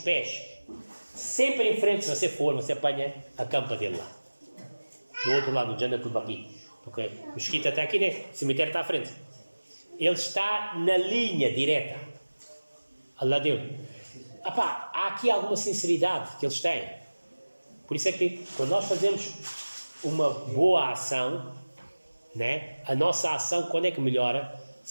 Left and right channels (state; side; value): inverted; both; correlation -1.00